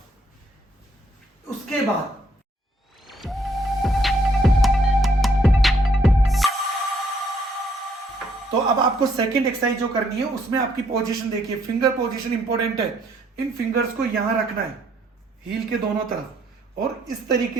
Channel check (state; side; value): normal; both; correlation 0.69